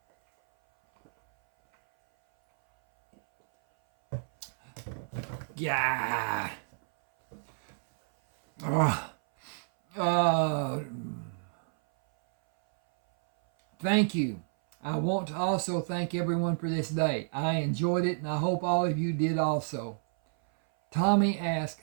Yeah. Thank you. I want to also thank everyone for this day. I enjoyed it, and I hope all of you did also. Tommy asked,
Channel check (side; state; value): left; silent; 58 dB below the other